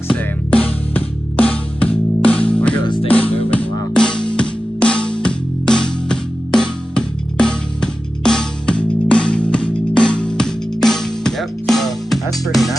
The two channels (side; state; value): both; normal; correlation 0.94